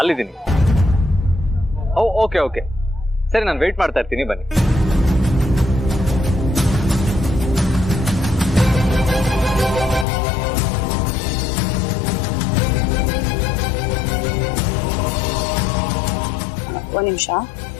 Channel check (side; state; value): right; drops out; at 10.1 s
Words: ಓಕೆ ಓಕೆ, ಸರಿ, ನಾನು ವೆಯ್ಟ್ ಮಾಡ್ತಾ ಇರ್ತೀನಿ, ಬನ್ನಿ. ಒಂದ್ ನಿಮಿಷ.